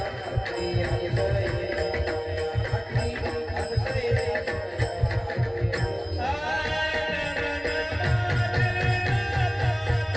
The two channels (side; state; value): both; identical; correlation 1.00